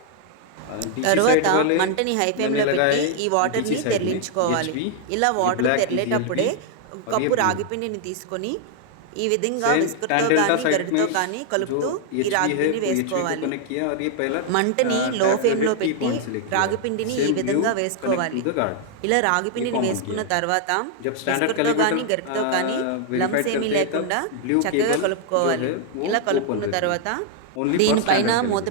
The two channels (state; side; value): different; both; correlation 0.00